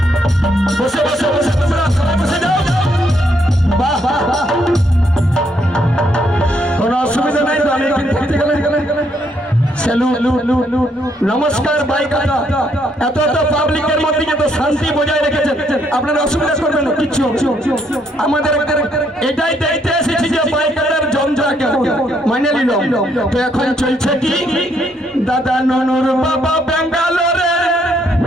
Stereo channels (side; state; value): both; normal; correlation 0.72